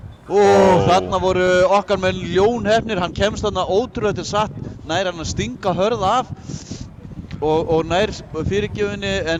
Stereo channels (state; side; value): identical; both; correlation 1.00